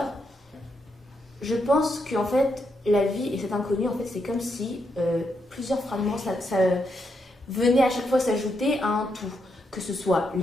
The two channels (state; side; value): normal; both; correlation 0.81